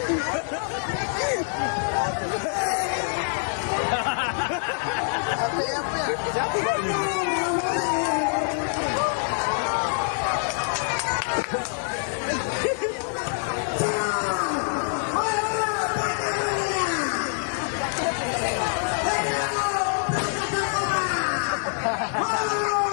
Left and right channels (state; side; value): silent; right; 61 dB below the other